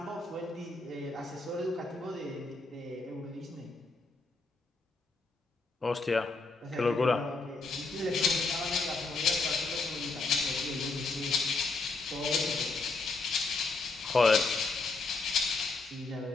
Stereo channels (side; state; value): right; quieter; 3.7 dB